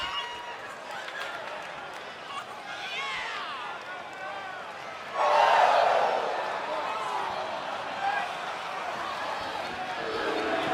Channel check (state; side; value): identical; both; correlation 1.00